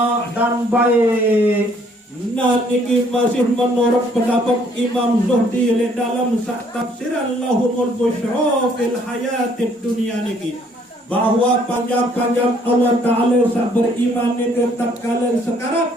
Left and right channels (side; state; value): both; normal; correlation 0.63